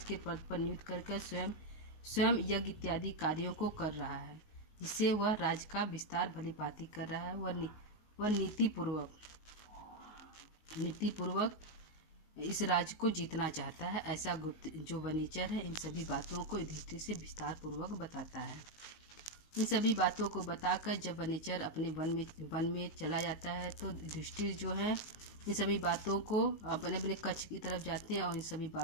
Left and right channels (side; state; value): right; late; 19 ms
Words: के पद पर नियुक्त करके स्वयं यज्ञ इत्यादि कार्यों को कर रहा है, जिससे वह राज्य का विस्तार भली भांति कर रहा है। वह नीतिपूर्वक इस राज्य को जीतना चाहता है, ऐसा गुप्त जो वनेचर है इन सभी बातों को युधिष्ठिर से विस्तार पूर्वक बताता है। इन सभी बातों को बताकर जब वनेचर अपने वन में चला जाता है तो युधिष्ठिर जो है इन सभी बातों को अपने कक्ष की तरफ जाते हैं और इन सभी